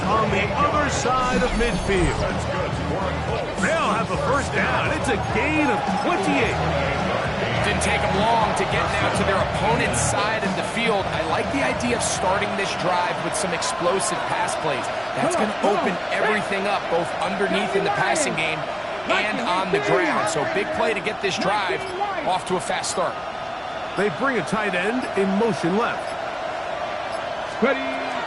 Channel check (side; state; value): both; identical; correlation 1.00